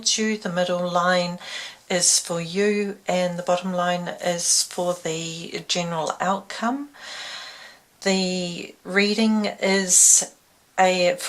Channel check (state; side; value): identical; both; correlation 1.00